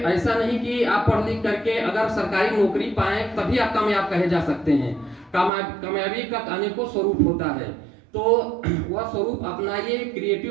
नहीं कि आप पढ़ लिख करके अगर सरकारी नौकरी पाएं तभी आप कामयाब कहे जा सकते हैं। कामयाबी का अनेकों स्वरूप होता है, तो वह स्वरूप अपनाइए,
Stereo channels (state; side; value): drops out; left; at 5.5 s